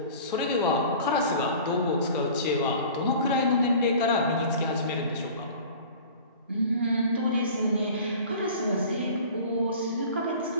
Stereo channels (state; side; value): inverted; both; correlation -0.43